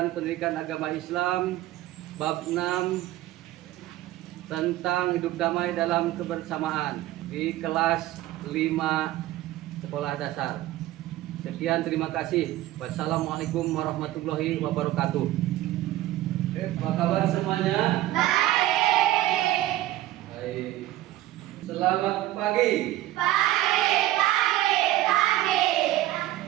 pendidikan agama Islam bab 6 tentang hidup damai dalam kebersamaan di kelas 5 sekolah dasar. Sekian, terima kasih. Wassalamualaikum warahmatullahi wabarakatuh. Apa kabar semuanya? Baik. Baik. Selamat pagi.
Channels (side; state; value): left; quieter; 15.4 dB